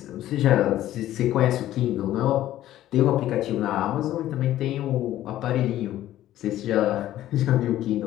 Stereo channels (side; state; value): right; quieter; 13.5 dB